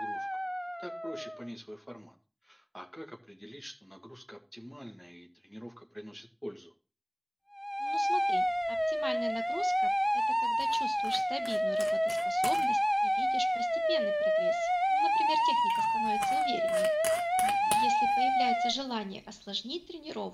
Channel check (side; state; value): both; identical; correlation 1.00